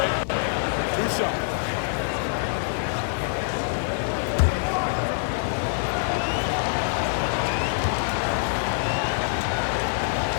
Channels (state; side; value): silent; right; 62 dB below the other